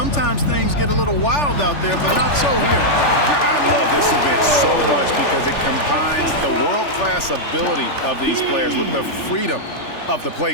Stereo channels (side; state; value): right; late; 3.4 ms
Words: things get a little wild out there, but not so here. I love this event so much because it combines the world-class ability of these players with the freedom of the